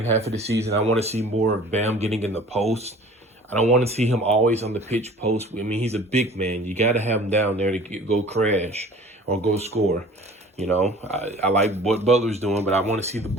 half of the season. I want to see more of Bam getting in the post. I don't want to see him always on the pitch post. I mean, he's a big man. You got to have him down there to go crash or go score. You know, I like what Butler's doing, but I want to see the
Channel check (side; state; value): both; normal; correlation 0.46